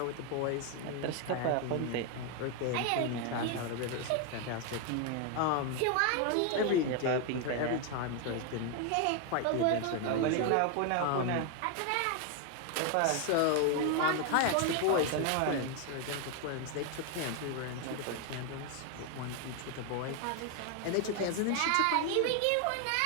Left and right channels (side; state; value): both; different; correlation 0.01